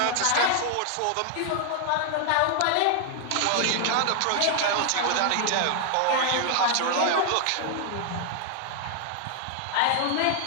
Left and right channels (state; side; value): different; both; correlation 0.00